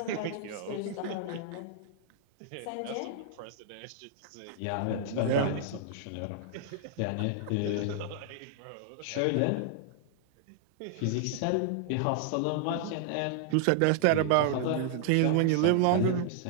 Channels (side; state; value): both; different; correlation -0.01